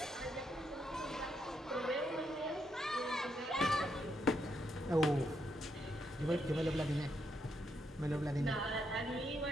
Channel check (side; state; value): both; normal; correlation 0.78